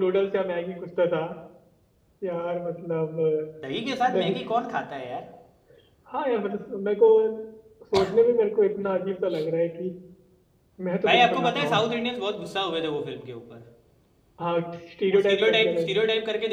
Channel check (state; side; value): identical; both; correlation 1.00